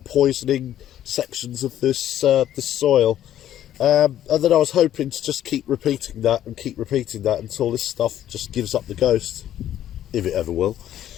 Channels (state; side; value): quieter; right; 11.6 dB